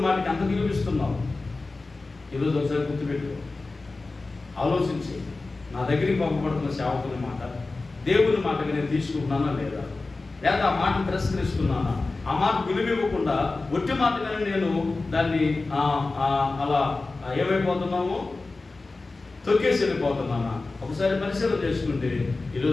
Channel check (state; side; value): quieter; right; 3.5 dB